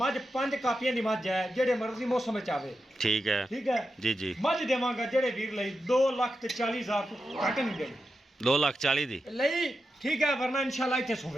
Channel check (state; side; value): normal; both; correlation 0.89